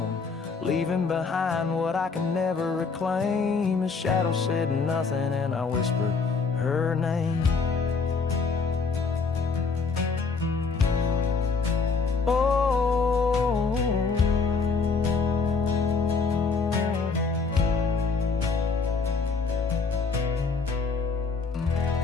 leaving behind what I can never reclaim. His shadow said nothing, and I whispered her name. Oh,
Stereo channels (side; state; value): right; quieter; 4.7 dB